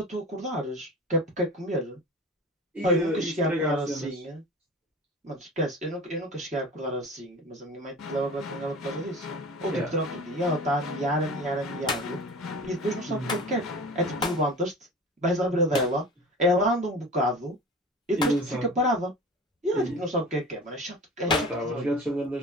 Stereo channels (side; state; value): both; normal; correlation 0.36